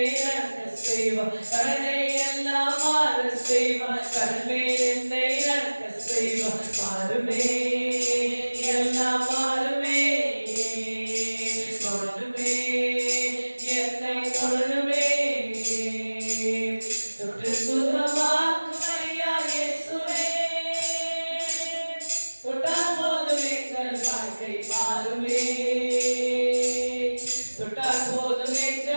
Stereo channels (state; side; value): inverted; both; correlation -1.00